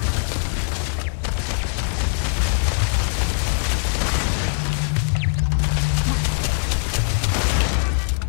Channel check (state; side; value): silent; right; 65 dB below the other